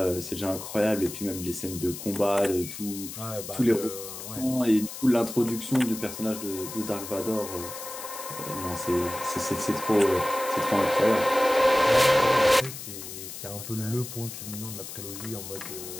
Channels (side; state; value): left; noise; hiss, 10 dB below the sound